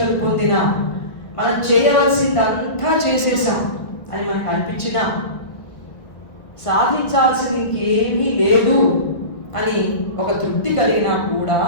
పొందినా, మనం చేయవలసిందంతా చేసేసాం అని మనకు అనిపించినా, సాధించాల్సింది ఇంకేమీ లేదు అని ఒక తృప్తి కలిగినా కూడా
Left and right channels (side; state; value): right; late; 1.8 ms